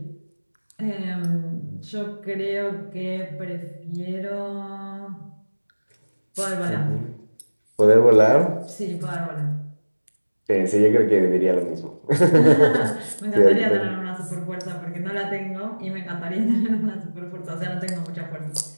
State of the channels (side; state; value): both; inverted; correlation -1.00